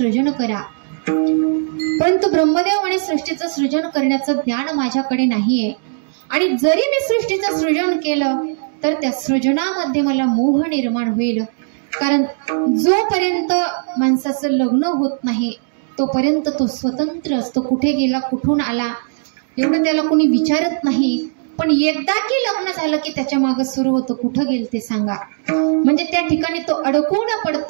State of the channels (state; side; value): silent; left; 67 dB below the other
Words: करा, परंतु ब्रह्मदेव म्हणे सृष्टीचं सृजन करण्याचं ज्ञान माझ्याकडे नाहीये, आणि जरी मी सृष्टीचं सृजन केलं तर त्या सृजनामध्ये मला मोह निर्माण होईल. कारण जोपर्यंत माणसाचं लग्न होत नाही तोपर्यंत तो स्वतंत्र असतो. कुठे गेला, कुठून आला, एवढं त्याला कोणी विचारत नाही. पण एकदा की लग्न झालं की त्याच्या मागे सुरू होतं कुठं गेल ते सांगा. म्हणजे त्या ठिकाणी तो अडकून